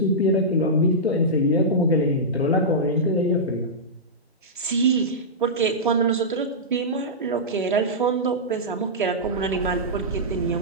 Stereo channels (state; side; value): normal; both; correlation -0.12